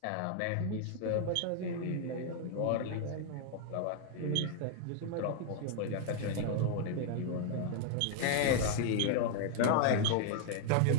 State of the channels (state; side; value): different; both; correlation 0.00